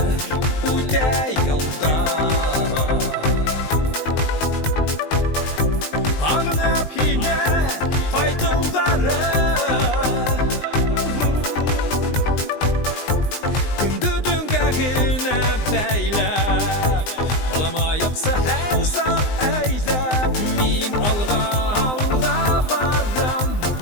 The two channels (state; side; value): late; right; 19 ms